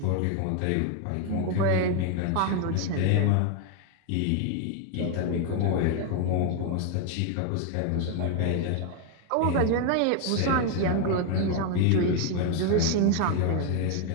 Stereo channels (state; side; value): different; both; correlation 0.01